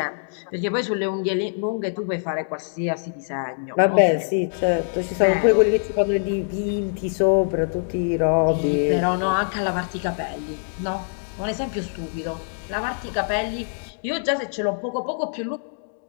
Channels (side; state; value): right; silent; digital silence